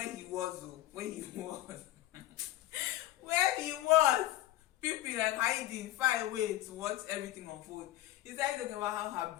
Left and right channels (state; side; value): quieter; right; 15.4 dB